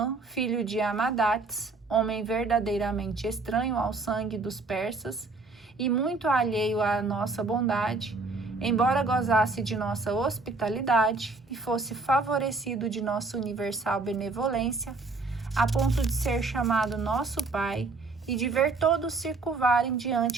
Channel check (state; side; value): quieter; left; 3.7 dB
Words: filho de Amadates, homem verdadeiramente estranho ao sangue dos persas e muito alheio à nossa bondade, embora gozasse de nossa hospitalidade e fosse favorecido de nossa universal benevolência, a ponto de ser chamado nosso Pai e de ver todos se curvarem